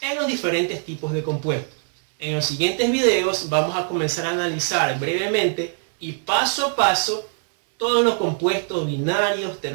en los diferentes tipos de compuestos. En los siguientes videos vamos a comenzar a analizar brevemente y paso a paso todos los compuestos binarios,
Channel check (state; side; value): silent; left; 60 dB below the other